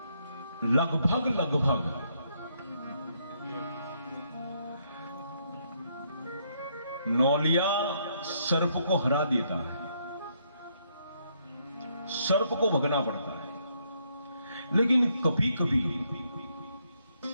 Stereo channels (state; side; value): inverted; both; correlation -0.73